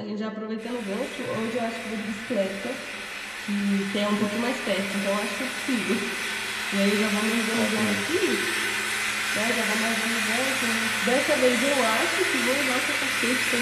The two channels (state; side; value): identical; both; correlation 1.00